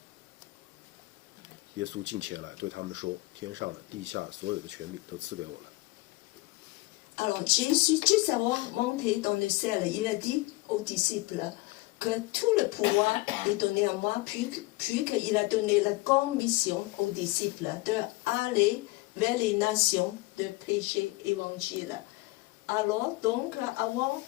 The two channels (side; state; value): right; quieter; 21.8 dB